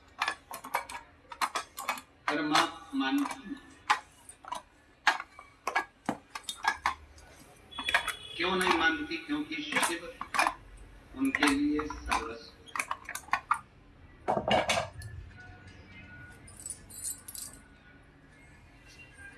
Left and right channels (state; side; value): identical; both; correlation 1.00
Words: पर माँ मानती नहीं। क्यों नहीं मानती? क्योंकि शिव उनके लिए सर्वस्व।